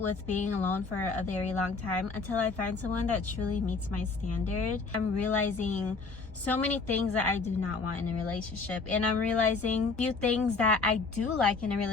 being alone for a very long time until I find someone that truly meets my standard. I'm realizing so many things that I do not want in a relationship, and I'm realizing a few things that I do like in a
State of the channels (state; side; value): quieter; right; 4.2 dB